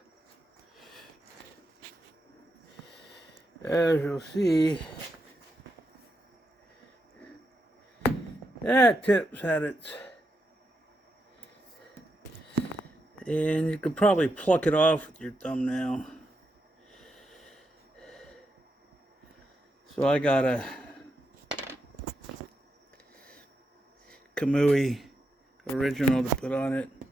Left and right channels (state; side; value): normal; both; correlation 0.84